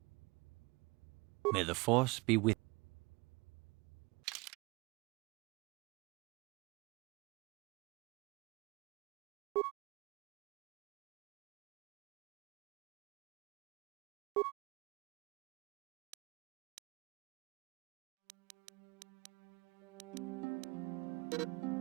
May the Force be with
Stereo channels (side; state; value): left; quieter; 25.5 dB